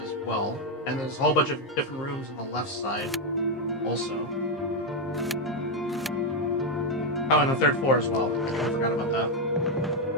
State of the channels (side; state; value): both; normal; correlation 0.05